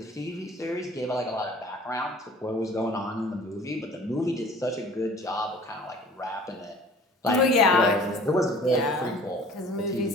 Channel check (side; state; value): both; normal; correlation 0.48